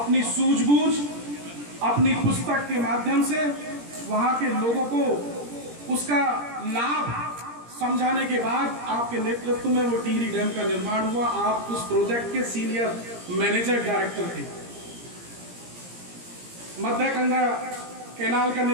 सूझबूझ अपनी पुस्तक के माध्यम से वहां के लोगों को उसका लाभ समझाने के बाद आपके नेतृत्व में वो टिहरी डैम का निर्माण हुआ। आप उस प्रोजेक्ट के सीनियर मैनेजर डायरेक्टर थे। मध्य गंगा कैनाल का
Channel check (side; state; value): left; late; 17 ms